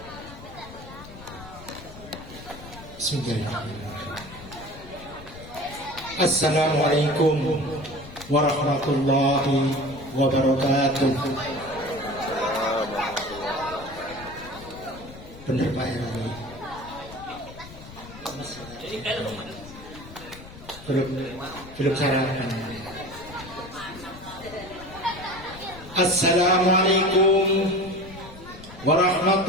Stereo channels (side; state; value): left; noise; rumble, 16 dB below the sound